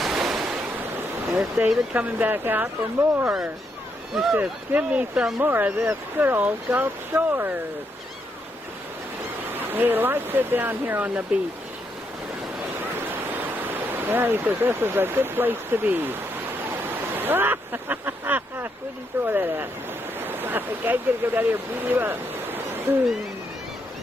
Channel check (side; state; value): both; normal; correlation 0.78